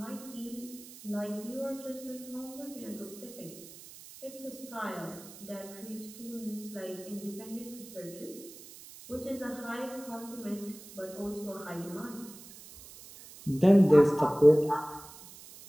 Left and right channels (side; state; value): right; noise; hiss, 17 dB below the sound